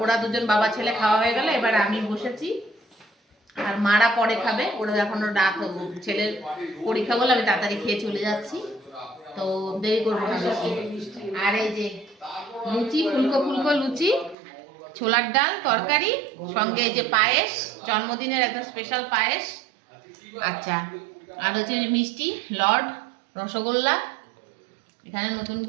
ওরা দুজন বাবা ছেলে খাওয়া হয়ে গেল। এবার আমি বসেছি, আর মারা পরে খাবে। ওরা এখনো রাত, ছেলের পরীক্ষা বলে আমি তাড়াতাড়ি খেয়ে চলে যাচ্ছি, তো দেরি করবো না বেশি। আর এই যে লুচি, ফুলকো ফুলকো লুচি, ছোলার ডাল তরকারি, সঙ্গে এই যে পায়েস, জন্মদিনের একদম স্পেশাল পায়েস। আচ্ছা, আর হচ্ছে মিষ্টি, লড, রসগোল্লা, এখানে নতুন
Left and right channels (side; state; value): left; drops out; at 14.4 s